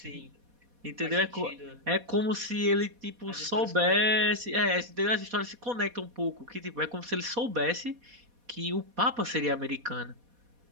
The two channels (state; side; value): late; left; 4.2 ms